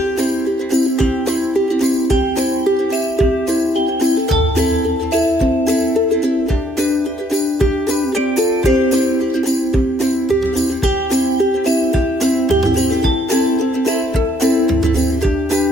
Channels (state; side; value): normal; both; correlation 0.68